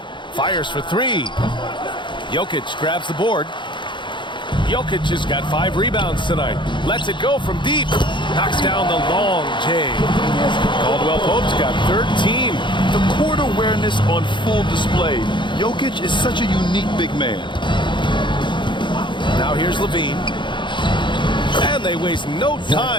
Fires for three. Jokic grabs the board. Jokic has got 5 rebounds tonight. Lets it go from deep. Knocks down the long J. Caldwell Pope's got 13. The court awareness on full display. Jokic is such a unique big man. Now here's Levine. And they waste no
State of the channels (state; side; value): late; right; 0.23 ms